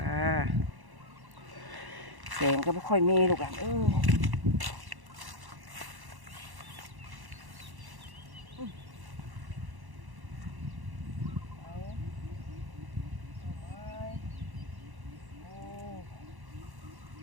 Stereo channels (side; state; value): left; late; 1.1 ms